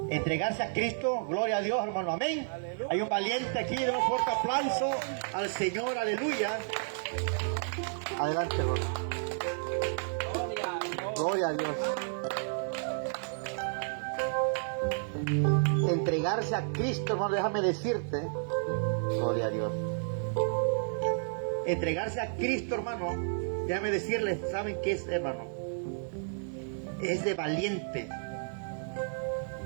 Entregarse a Cristo, gloria a Dios, hermano. Amén. Aleluya. Hay un valiente aquí, de un fuerte aplauso al Señor. Aleluya. Adelante, hermano. Gloria a Dios. Entregarse a Cristo, hermano, déjame decirte, gloria a Dios. Entregarse a Cristo, hermano, déjame decirles, ¿saben qué es, hermano? Es de valiente.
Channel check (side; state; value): left; silent; digital silence